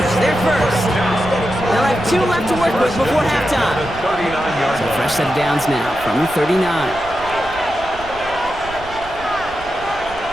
They're first. They'll have 2 left to work with before halftime. So fresh set of downs now from the 39.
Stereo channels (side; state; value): right; noise; rumble, 16 dB below the sound